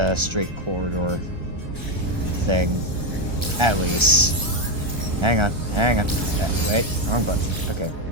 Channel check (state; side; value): late; left; 1.3 ms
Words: straight corridor thing. At least. Hang on. Wait, wrong button. Okay.